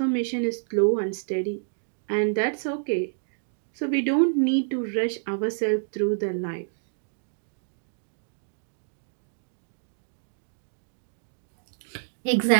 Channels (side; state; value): left; silent; digital silence